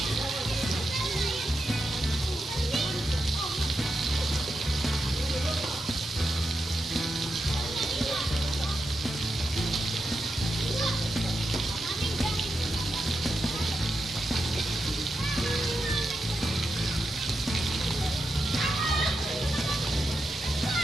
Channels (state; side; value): normal; both; correlation 0.87